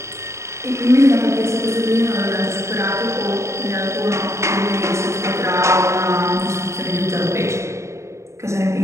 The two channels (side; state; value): left; late; 0.14 ms